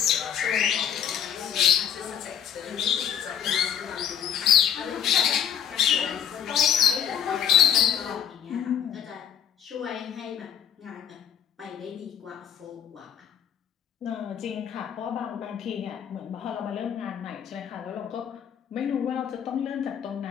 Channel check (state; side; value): quieter; right; 8.9 dB